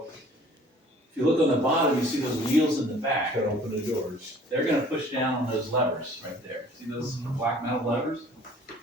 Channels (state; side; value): normal; both; correlation 0.52